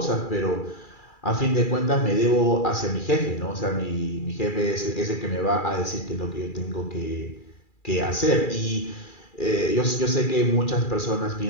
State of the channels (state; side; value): late; right; 2.4 ms